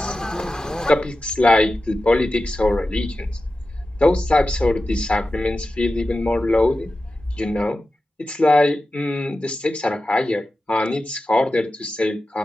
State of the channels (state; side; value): normal; both; correlation 0.93